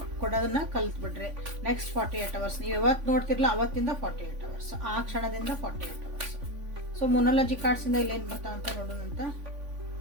ಕೊಡೋದನ್ನ ಕಲ್ತ್ಬಿಡ್ರಿ. ನೆಕ್ಸ್ಟ್ 48 hours ನೀವು ಯಾವತ್ತು ನೋಡ್ತಿರ್ಲ ಅವತ್ತಿಂದ 48 hours, ಆ ಕ್ಷಣದಿಂದ 48 hours. ಸೊ ಮೊನಾಲಜಿ ಕಾರ್ಡ್ಸಿಂದ ಇಲ್ಲೇನು ಬರ್ತಾವಂತ ನೋಡೋಣಂತ.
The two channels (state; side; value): late; left; 3.5 ms